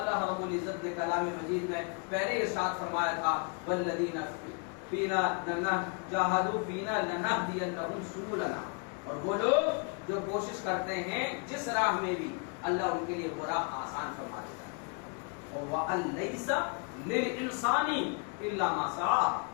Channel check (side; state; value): right; quieter; 38.1 dB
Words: رب العزت نے کلام مجید میں پہلے ارشاد فرمایا تھا, والذین فینا جاہدوا فینا لنہدینہم سبلنا, اور وہ لوگ جو کوشش کرتے ہیں جس راہ میں بھی, اللہ ان کے لیے وہ راہ آسان فرما دیتا ہے. وَأَن لَيْسَ لِلْإِنسَانِ إِلَّا مَا سَعَىٰ,